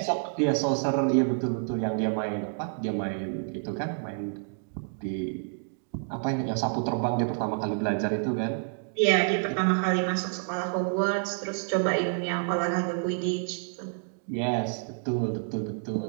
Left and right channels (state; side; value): silent; left; digital silence